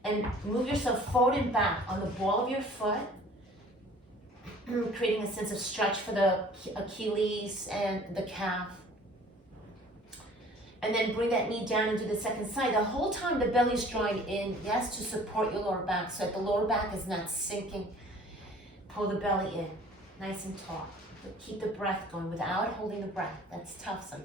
and move yourself forward and back on the ball of your foot, creating a sense of stretch for the Achilles and the calf. And then bring that knee down into the second side. The whole time the belly's drawing in, yes, to support your lower back so that the lower back is not sinking. Pull the belly in, nice and tall. But keep the breath going without holding the breath. That's tough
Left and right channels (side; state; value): both; normal; correlation 0.50